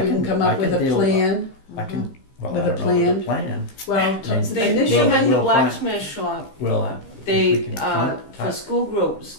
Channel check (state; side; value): late; right; 15 ms